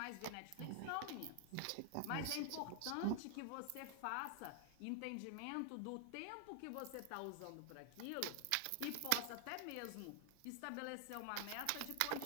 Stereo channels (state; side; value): different; both; correlation 0.00